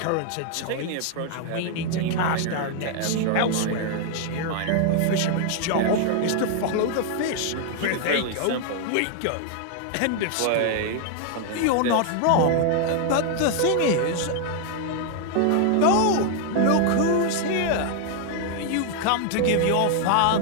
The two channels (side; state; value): both; different; correlation 0.00